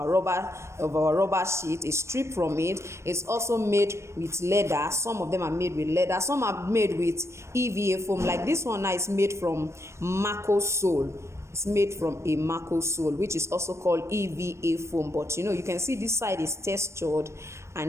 rubber sheet, a strip from it. It's also made with leather. Some of them are made with leather, some are made with EVA foam. Like this one now is made from Mako sole. It's made from a Mako sole, which is also called EVA foam. But you can see this side is textured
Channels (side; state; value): left; late; 0.13 ms